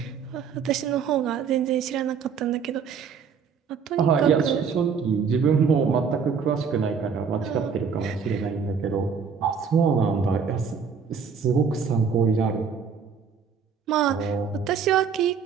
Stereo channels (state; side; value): quieter; left; 6.3 dB